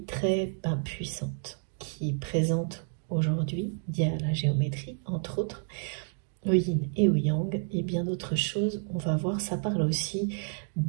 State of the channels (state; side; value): silent; left; 58 dB below the other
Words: très puissante qui est présente aujourd'hui, via la géométrie, entre autres, le yin et le yang, et bien d'autres choses. On va voir, ça parle aussi